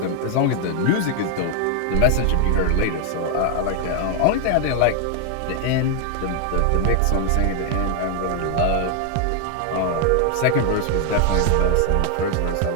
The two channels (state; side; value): different; both; correlation 0.00